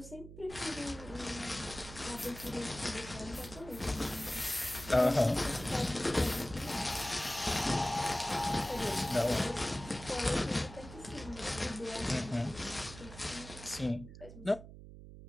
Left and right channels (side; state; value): right; noise; hum, 15 dB below the sound